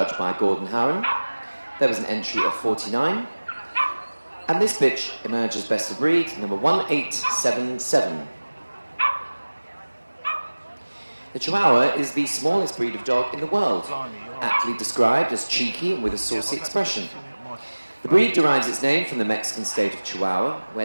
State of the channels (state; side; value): inverted; both; correlation -1.00